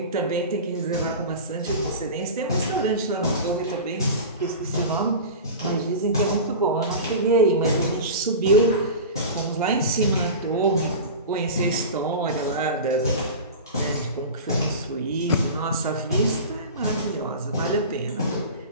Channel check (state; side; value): inverted; both; correlation -0.30